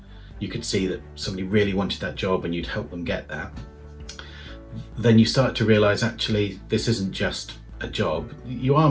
you could see that somebody really wanted that job and you'd help them get that, then you start to realise actually this isn't just a job, you are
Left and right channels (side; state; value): both; identical; correlation 1.00